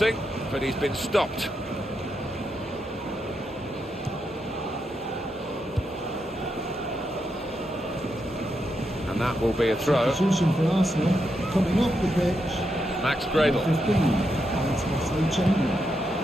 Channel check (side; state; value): both; normal; correlation 0.83